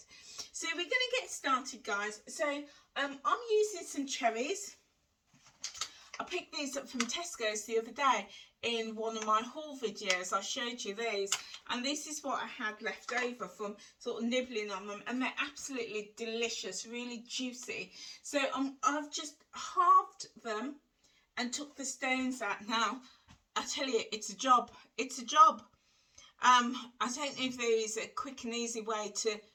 So we're going to get started, guys. So I'm using some cherries. I picked these up from Tesco's the other day in one of my haul videos. I showed you these, and this is what I had left over from sort of nibbling on them, and they're absolutely delicious, really juicy. So I've just halved them and took the stones out. Now I tell you, it's a job. It's a job. I don't know if there is a quick and easy way to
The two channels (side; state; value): both; identical; correlation 1.00